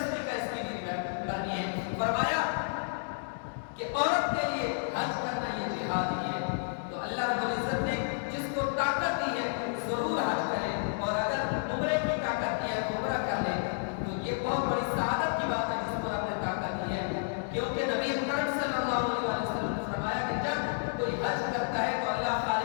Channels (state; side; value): silent; right; digital silence